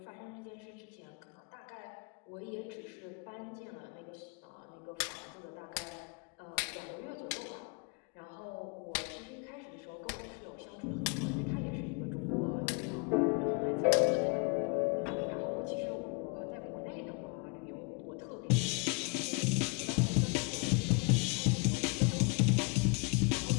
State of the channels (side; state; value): right; quieter; 32.3 dB